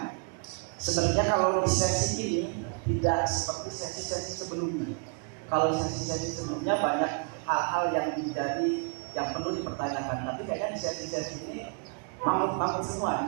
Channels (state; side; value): quieter; left; 37.5 dB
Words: sebenarnya kalau di sesi ini tidak seperti sesi-sesi sebelumnya. Kalau sesi-sesi sebelumnya banyak hal-hal yang menjadi yang perlu dipertanyakan, tapi kayaknya di sesi-sesi ini mangut-mangut semua.